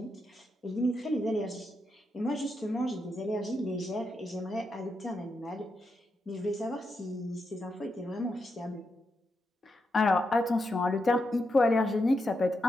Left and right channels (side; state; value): both; normal; correlation 0.85